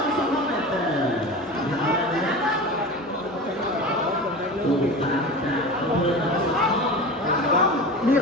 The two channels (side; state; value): both; normal; correlation 0.31